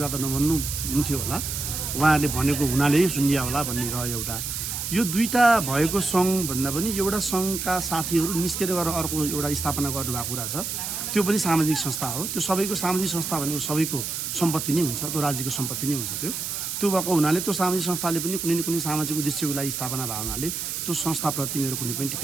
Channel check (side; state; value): right; noise; hiss, 4 dB below the sound